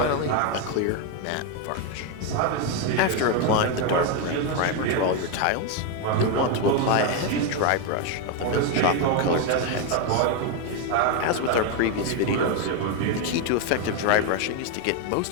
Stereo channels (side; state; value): both; different; correlation 0.02